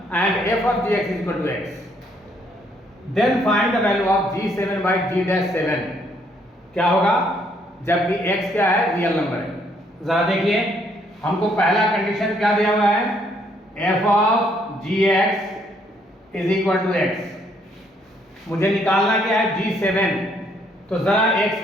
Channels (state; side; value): normal; both; correlation 0.69